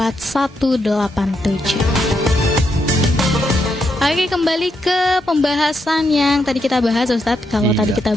Oke, kembali ke pembahasan yang tadi kita bahas Ustadz. Kalau tadi kita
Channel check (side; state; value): both; normal; correlation 0.80